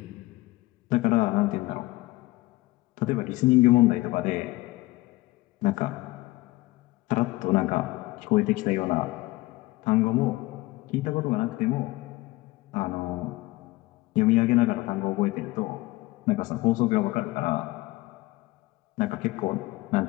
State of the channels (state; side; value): quieter; right; 19.9 dB